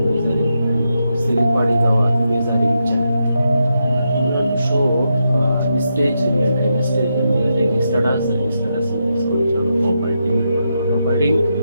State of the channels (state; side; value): inverted; both; correlation -0.84